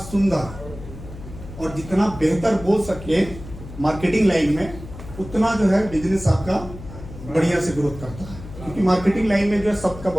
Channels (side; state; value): left; noise; hum, 14 dB below the sound